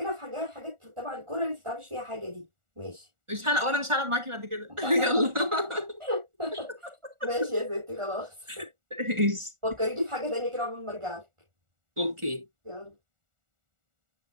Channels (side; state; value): left; late; 1.4 ms